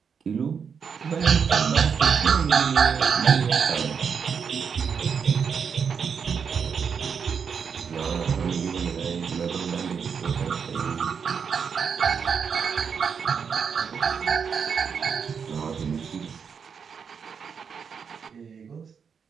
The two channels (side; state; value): left; quieter; 6.5 dB